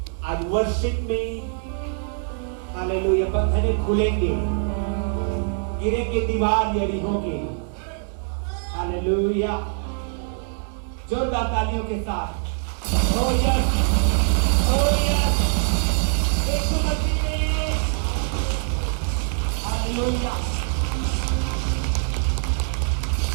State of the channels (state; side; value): silent; left; 61 dB below the other